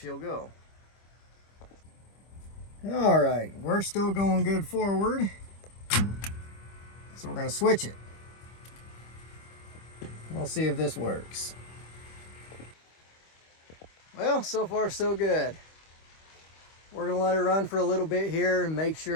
go. All right, we're still going good forward. So we're going to switch it. We'll see if this works. Well, so far so good. We're going to let her run for a little bit here and make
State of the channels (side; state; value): right; late; 25 ms